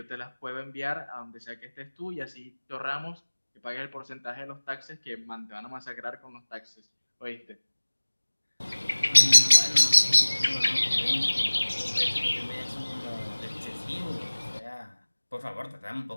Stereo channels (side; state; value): both; inverted; correlation -1.00